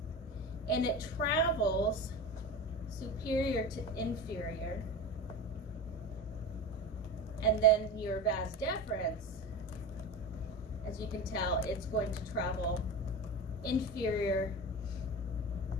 and it travels superior to inferior. And then your vas deferens, as you can tell, it's going to travel inferior,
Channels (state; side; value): normal; both; correlation 0.27